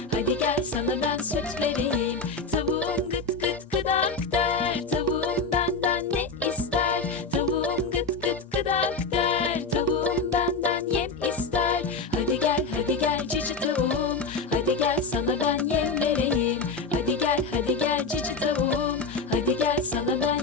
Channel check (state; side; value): quieter; right; 4.0 dB